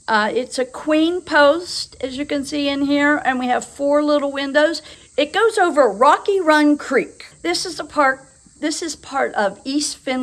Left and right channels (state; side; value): identical; both; correlation 1.00